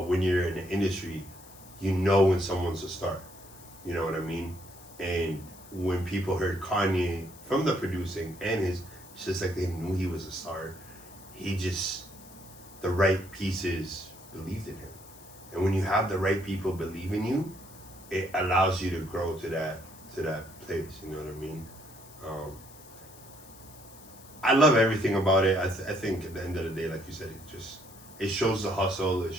when you're in the industry, you know when someone's a star. You know what I mean? And when people heard Kanye from the producing and it's just like they knew he was a star. The right pieces believed in him. And when you have the right people believe in you, it allows you to grow to that place. You know what I mean? I love everything about it. I think at the end of the day, like you said, it shows the hustle. It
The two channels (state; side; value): noise; left; hiss, 21 dB below the sound